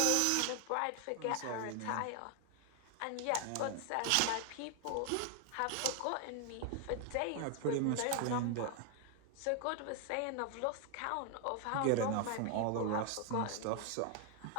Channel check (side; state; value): both; different; correlation 0.00